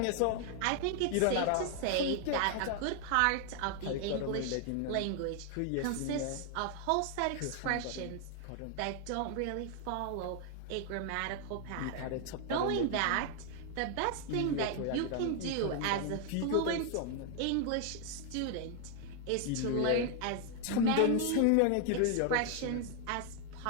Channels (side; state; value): both; different; correlation 0.00